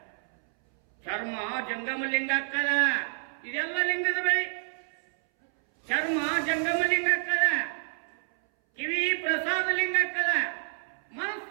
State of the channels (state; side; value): silent; left; 59 dB below the other